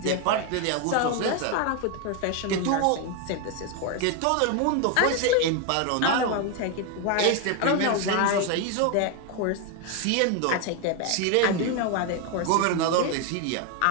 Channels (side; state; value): both; different; correlation 0.01